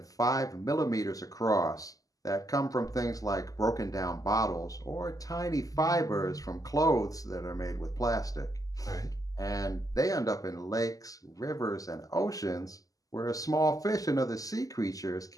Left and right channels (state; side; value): late; right; 0.17 ms